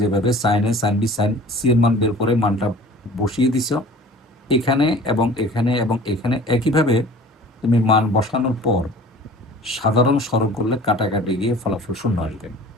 যেভাবে sign A, sine B, sign C এর মান বের করে মানটা বসিয়ে দিছ, এখানে এবং এখানে এবং এখানে একইভাবে তুমি মান বসানোর পর সাধারণ সরল করলে কাটাকাটি গিয়ে ফলাফল 0 আসবে।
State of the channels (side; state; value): both; normal; correlation 0.45